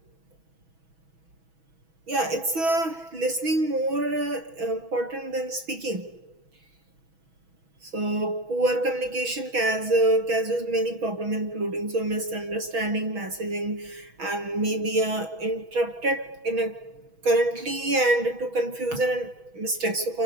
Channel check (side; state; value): left; late; 6.2 ms